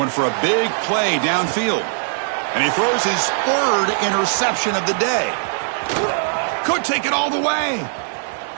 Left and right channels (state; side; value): silent; left; digital silence